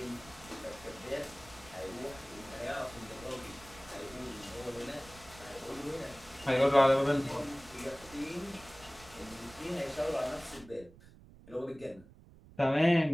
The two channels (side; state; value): right; noise; rumble, 21 dB below the sound